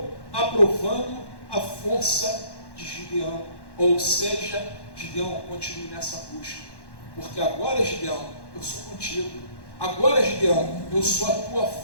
aprovando a força de Gideão. Ou seja, Gideão, continue nessa busca. Porque agora, Gideão, eu sou contigo. Agora, Gideão, eu sou a tua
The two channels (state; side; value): late; right; 1.1 ms